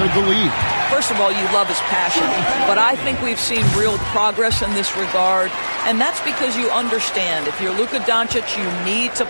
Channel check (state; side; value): inverted; both; correlation -1.00